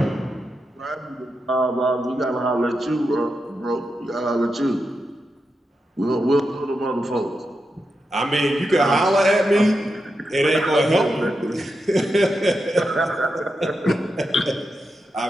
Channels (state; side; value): normal; both; correlation 0.87